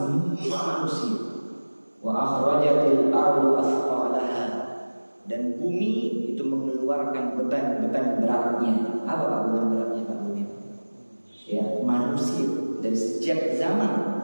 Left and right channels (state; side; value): inverted; both; correlation -1.00